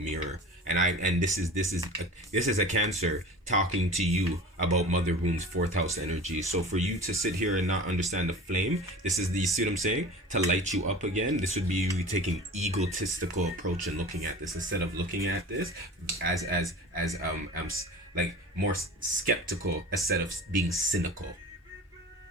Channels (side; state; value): both; normal; correlation 0.38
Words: and this is a Cancer talking to you about mother wounds, fourth house energy. So for you to sit here and not understand the flame, this is the, you see what I'm saying? To light you up again, this would be you taking egotistical approach and looking at this instead of looking at this as like more skeptical instead of being cynical.